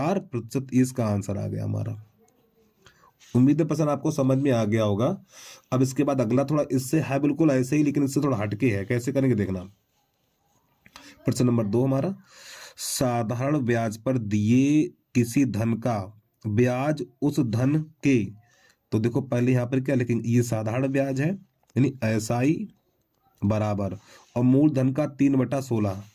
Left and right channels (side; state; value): both; identical; correlation 1.00